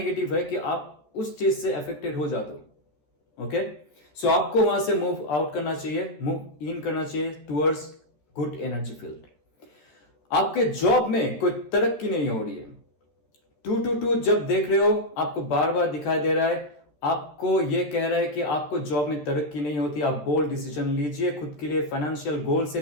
है कि आप उस चीज से अफेक्टेड हो जाते हो, ओके? सो आपको वहां से मूव आउट करना चाहिए, मूव इन करना चाहिए टुवर्ड्स गुड एनर्जी फील्ड। आपके जॉब में कोई तरक्की नहीं हो रही है, 222 जब देख रहे हो आपको बार बार दिखाई दे रहा है, आपको यह कह रहा है कि आपको जॉब में तरक्की नहीं होती, आप बोल्ड डिसीजन लीजिए खुद के लिए, फाइनेंशियल गोल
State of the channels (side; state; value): right; late; 13 ms